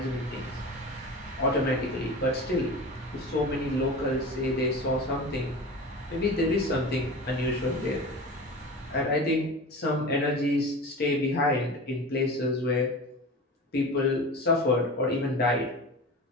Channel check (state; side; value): normal; both; correlation 0.33